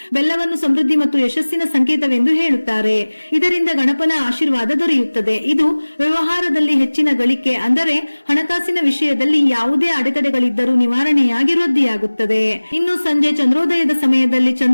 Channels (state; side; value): inverted; both; correlation -1.00